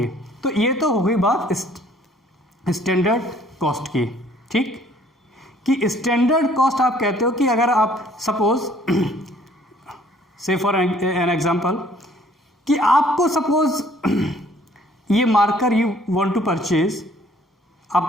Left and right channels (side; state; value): both; normal; correlation 0.59